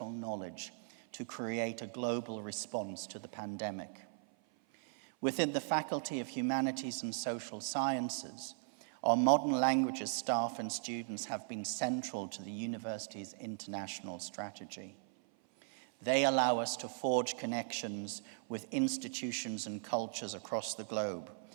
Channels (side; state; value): left; silent; 52 dB below the other